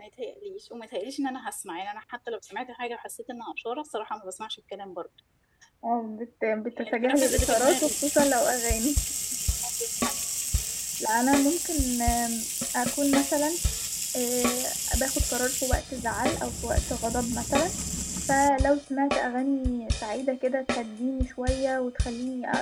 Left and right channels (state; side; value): identical; both; correlation 1.00